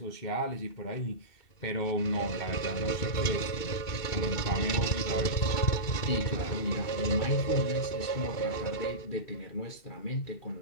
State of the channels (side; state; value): right; late; 2.7 ms